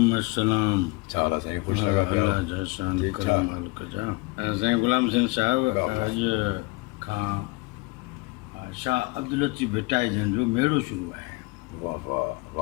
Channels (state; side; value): quieter; right; 24.7 dB